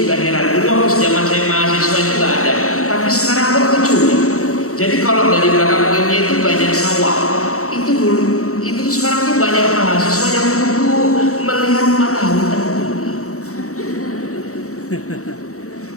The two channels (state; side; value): late; right; 0.64 ms